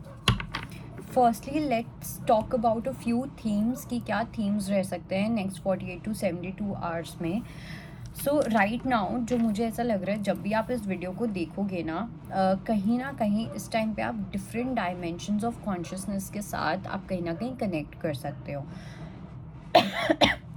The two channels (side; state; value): both; identical; correlation 1.00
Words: Firstly let's talk about a few themes कि क्या themes रह सकते हैं next 48 to 72 hours में. सो right now जो मुझे ऐसा लग रहा है, जब भी आप इस वीडियो को देखोगे ना कहीं इस टाइम पे आप डिफरेंट डायमेंशंस ऑफ कॉन्शियसनेस के साथ आप कहीं ना कहीं कनेक्ट कर सकते हो.